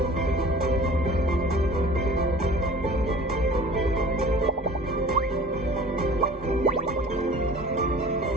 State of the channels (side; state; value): both; normal; correlation 0.44